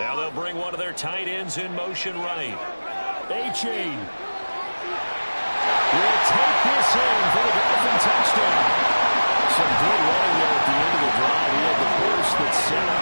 they'll bring one of their tight ends in motion right. Achane will take this in for the Dolphin touchdown. Some good running there at the end of the drive. He had the burst that set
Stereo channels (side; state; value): both; inverted; correlation -1.00